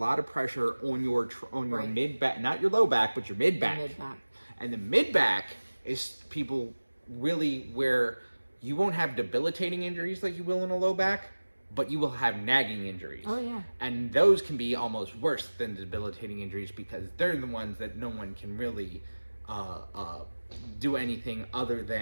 of pressure on your mid back, not your low back, but your mid back. And the mid back is people really where you won't have debilitating injuries like you will in a low back, but you will have nagging injuries. Oh yeah. And those can be almost worse than debilitating injuries, because they're the ones that no one can really do anything other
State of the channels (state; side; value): inverted; both; correlation -1.00